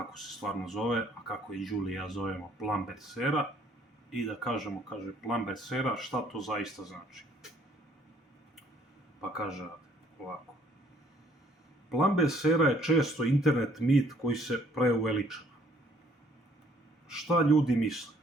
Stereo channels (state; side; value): normal; both; correlation 0.63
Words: se stvarno zove, a kako i Julie i ja zovemo Plumbers era, i da kažemo, kaže Plumbers era, šta to zaista znači. Pa kaže ovako. Plumbers era je često internet mit koji se preuveličava. Šta ljudi misle?